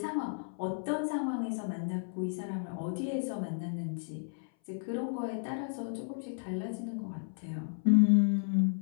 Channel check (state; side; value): silent; right; 56 dB below the other